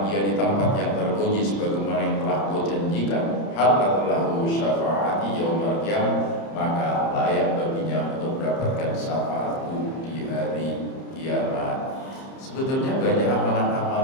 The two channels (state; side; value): late; right; 30 ms